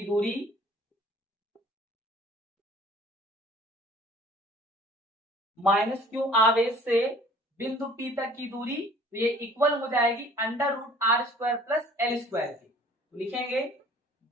दूरी माइनस क्यू आवेश से बिंदु P तक की दूरी, तो ये इक्वल हो जाएगी under root R square plus L square की, तो लिखेंगे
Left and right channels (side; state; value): both; normal; correlation 0.52